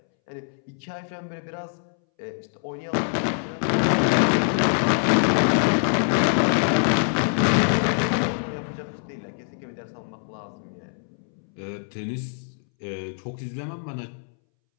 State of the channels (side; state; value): right; silent; 62 dB below the other